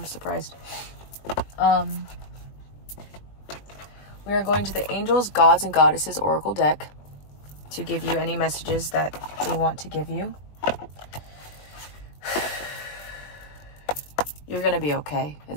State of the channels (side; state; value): right; late; 21 ms